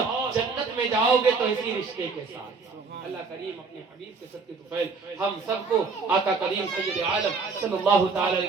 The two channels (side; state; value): left; quieter; 4.5 dB